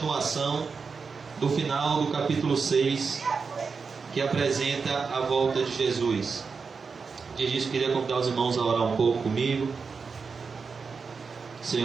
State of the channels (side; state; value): left; quieter; 5.1 dB